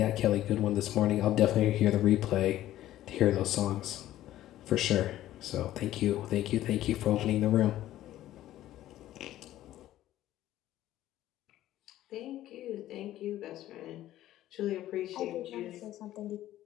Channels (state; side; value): quieter; right; 13.8 dB